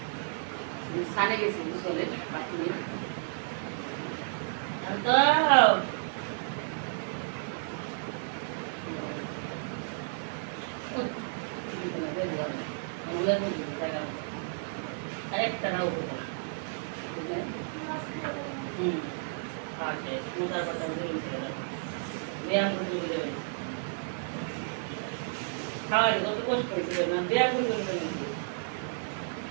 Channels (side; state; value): left; silent; digital silence